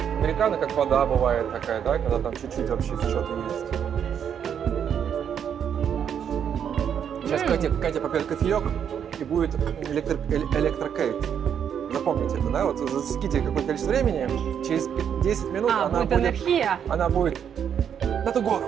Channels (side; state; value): left; quieter; 8.3 dB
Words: Американо, как вода бывает такая, да, когда там чуть-чуть вообще что-то есть. Сейчас Катя попьет кофеек, и будет электрокейт. Запомните это, да? Вот засеките какое-то количество времени, через 10 минут она будет энергия. Она будет на ту